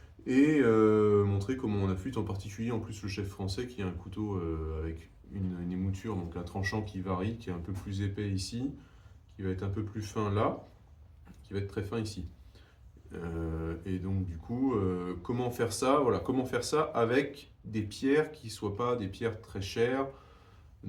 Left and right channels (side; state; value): both; identical; correlation 1.00